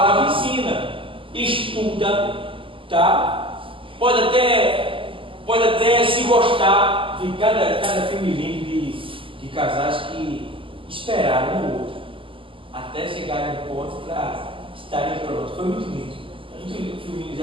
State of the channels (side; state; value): left; late; 0.25 ms